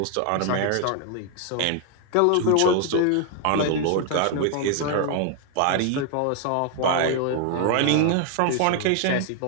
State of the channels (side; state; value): both; different; correlation 0.00